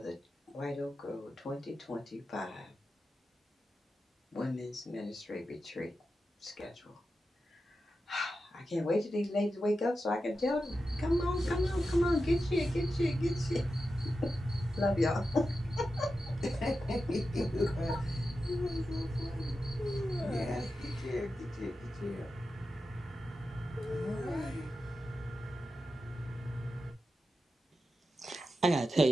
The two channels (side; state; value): both; normal; correlation 0.91